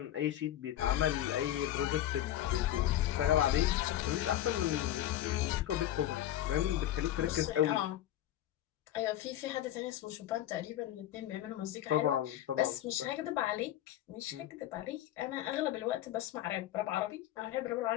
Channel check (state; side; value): quieter; right; 12.7 dB